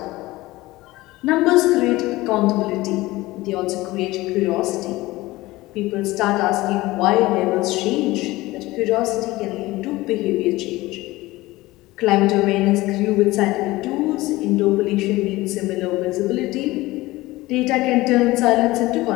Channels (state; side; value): quieter; right; 19.1 dB